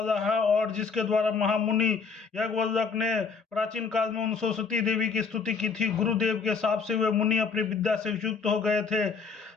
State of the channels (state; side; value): quieter; right; 5.2 dB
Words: है और जिसके द्वारा महामुनि यज्ञवल्लभ ने प्राचीन काल में उन सरस्वती देवी की स्तुति की थी। गुरुदेव के शाप से वे मुनि अपनी विद्या से युक्त हो गए थे।